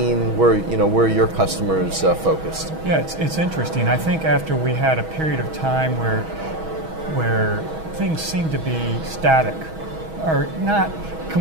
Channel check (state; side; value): late; left; 6.2 ms